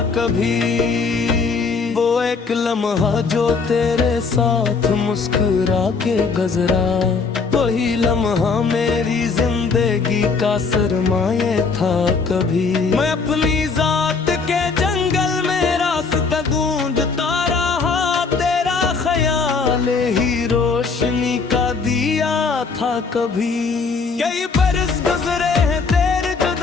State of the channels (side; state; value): right; quieter; 4.8 dB